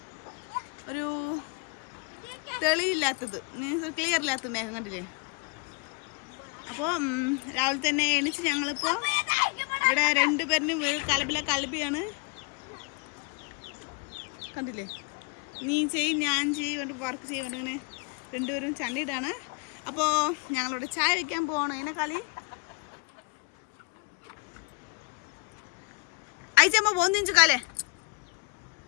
തെളിയില്ലാത്തത്, മീൻസ് ക്ലിയർ ഇല്ലാത്ത മേഘം കണ്ടില്ലേ. അപ്പോൾ രാവിലെ തന്നെ എണീച്ച് ഞങ്ങളിപ്പോൾ ഇവിടെ 2 പേരിനും കലബിയാണ് കണ്ടില്ലേ. നീ ചെയ്യും ഞാൻ ചെയ്യും വേണ്ടി വർക്ക് ചെയ്യാൻ ഇങ്ങനെ 2 പേരും ചണ്ടിയിട്ടാണ്. അപ്പോൾ ഞങ്ങളിവിടെ ചായ വയ്ക്കാൻ പോകണം. അതിനെ കളി അയച്ചമ്മ പോന്നിഞ്ചു കാലേ.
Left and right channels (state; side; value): quieter; right; 32.0 dB